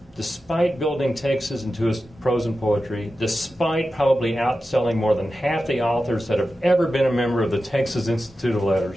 despite building Texas into his prose and poetry, despite probably outselling more than half the authors that have ever been a member of the Texas Institute of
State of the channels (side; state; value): both; normal; correlation 0.92